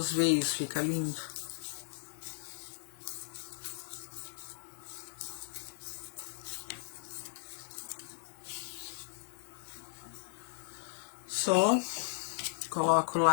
veios, fica lindo. Só coloco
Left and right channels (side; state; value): right; silent; digital silence